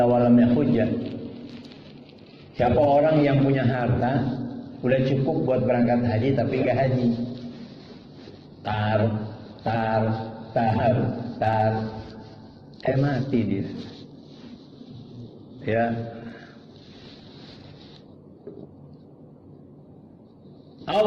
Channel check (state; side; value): identical; both; correlation 1.00